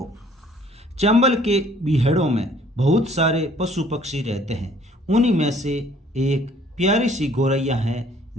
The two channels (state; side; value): normal; both; correlation 0.58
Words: चंबल के बीहड़ों में बहुत सारे पशु पक्षी रहते हैं। उन्हीं में से एक प्यारी सी गौरैया है